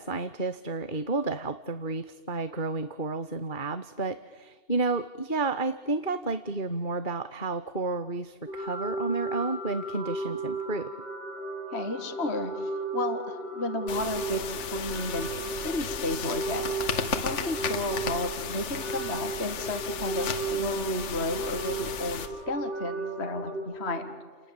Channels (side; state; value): right; late; 2.8 ms